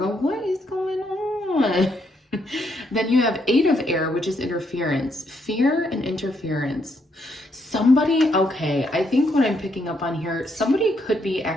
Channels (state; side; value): normal; both; correlation 0.75